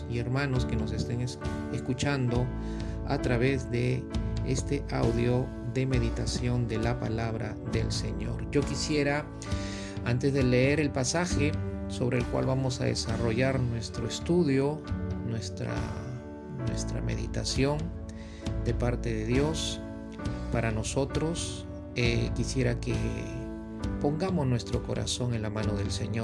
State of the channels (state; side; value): identical; both; correlation 1.00